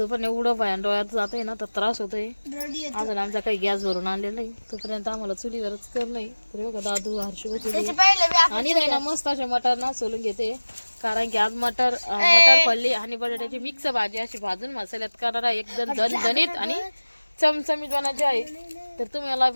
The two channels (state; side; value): inverted; both; correlation -1.00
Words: पण एवढं भयान डोळ्यात जातंय ना तर त्रास होतोय. अजून आमचा काही गॅस भरून आणलेला नाही, तोपर्यंत आम्हाला चुलीवरच करणं. तर बघा दादू हर्षू आणि नाही ना मस्त असे मटर ना सोलून घेते, कारण की आज मटर पडली आणि बटाट्याची मिक्स भाजी अशी भाजून मसाल्यात करणार एकदम झणझणीत आणि चमचमीत बनायची आहे. तर तुम्हाला